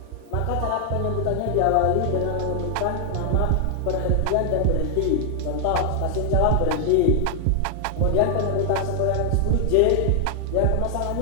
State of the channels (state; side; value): different; both; correlation 0.00